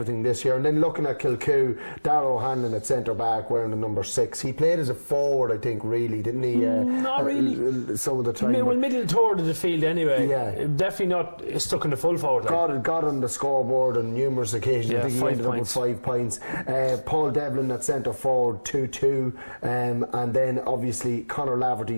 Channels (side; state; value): both; inverted; correlation -1.00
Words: this year. And then looking at Kilcoo, Darragh O'Hanlon at centre back wearing the number 6. He played as a forward, I think, really, didn't he? Not really. Some of the time. Well, middle toward of the field anyway. Yeah. Definitely not stuck in the full forward line. Got on the scoreboard on numerous occasions. Yeah, I think he ended up with 5 points. Paul Devlin at centre forward, 2-2. And then obviously Conor